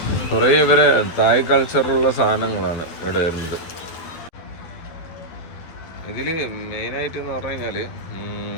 കുറേ ഇവരെ തായ് കൾച്ചറുള്ള സാധനങ്ങളാണ് ഇവിടെ വരുന്നത്. ഇതിൽ മെയിനായിട്ട് എന്ന് പറഞ്ഞു കഴിഞ്ഞാൽ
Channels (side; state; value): right; late; 12 ms